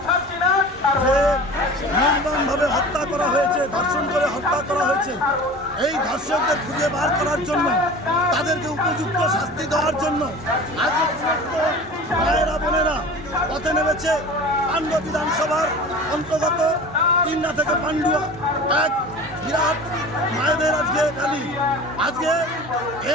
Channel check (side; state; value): both; normal; correlation 0.38